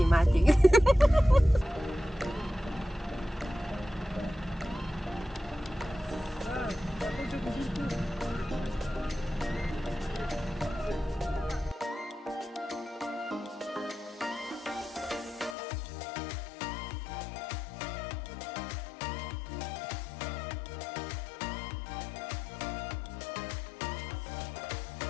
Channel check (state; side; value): drops out; right; at 15.6 s